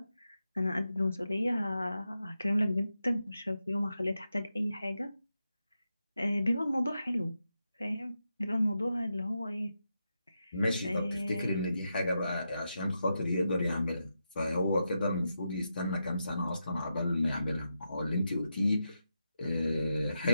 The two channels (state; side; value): inverted; both; correlation -0.87